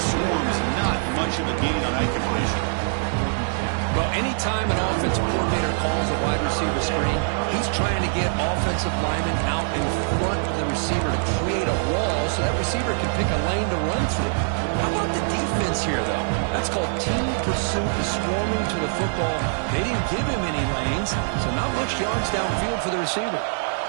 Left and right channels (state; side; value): silent; left; 56 dB below the other